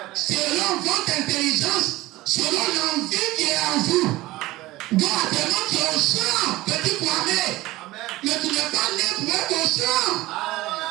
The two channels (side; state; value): left; quieter; 18.4 dB